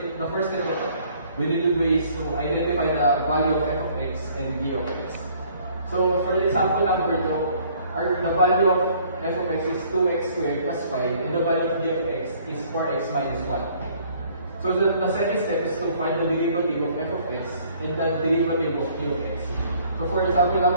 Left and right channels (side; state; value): both; inverted; correlation -0.59